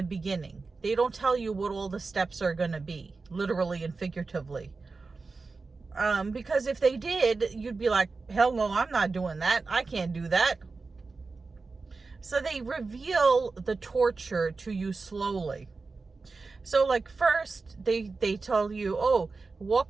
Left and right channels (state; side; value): quieter; left; 4.1 dB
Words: beginning. They don't tell you what all the steps are going to be, literally and figuratively. Because if they did, you'd be like, hell no, I'm not doing that. I can't do that. So they reveal the torture to you slowly. So like first they tell you, oh, walk